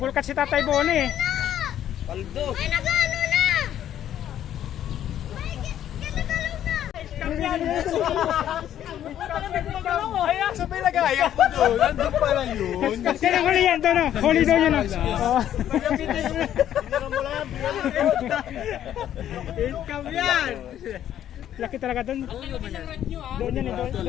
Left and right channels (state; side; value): quieter; right; 11.0 dB